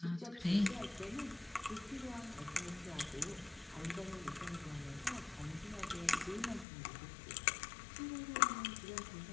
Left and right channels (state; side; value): drops out; right; at 6.7 s